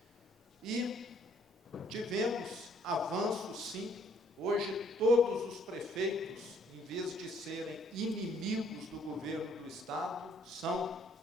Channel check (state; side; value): normal; both; correlation 0.64